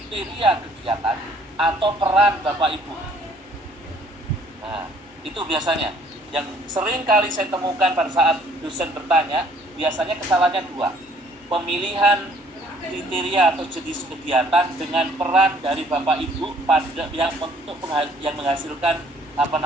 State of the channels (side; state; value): both; normal; correlation 0.60